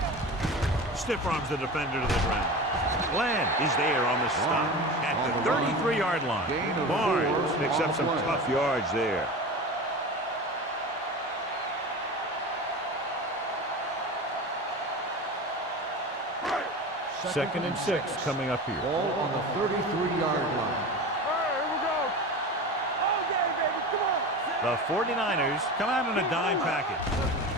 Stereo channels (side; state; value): both; normal; correlation 0.30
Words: Stiff arms the defender to the ground. Glenn is there on the stop at the 33-yard line. Barnes picks up some tough yards there. Second and 6 coming up here. Ball on the 33-yard line. Here we go. All day, baby. Come on. The 49ers come out in a dime package.